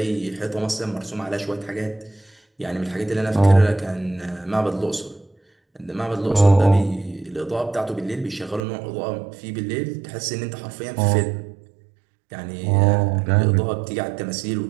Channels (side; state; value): left; drops out; at 8.6 s